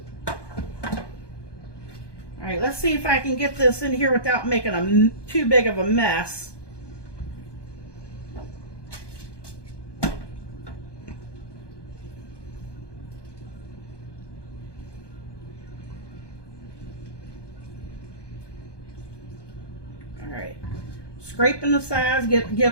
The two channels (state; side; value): late; right; 1.2 ms